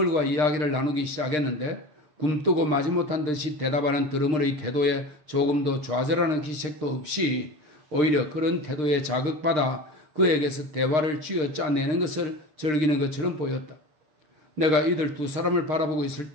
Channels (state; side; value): late; left; 6.6 ms